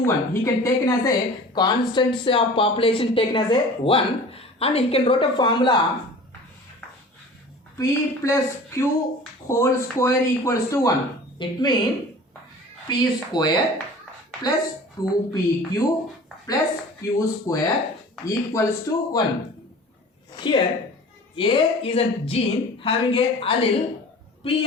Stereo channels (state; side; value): normal; both; correlation 0.42